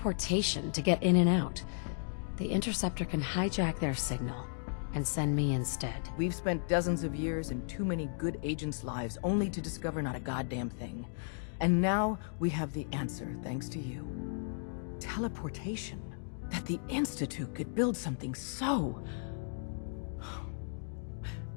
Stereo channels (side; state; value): right; silent; digital silence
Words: to get in and out. The Interceptor can hijack their signal and send me instead. We've spent dozens of years and too many good agents' lives only to discover not a goddamn thing. And now we have the answer, thanks to you. Teleportation. That the Institute could build something so...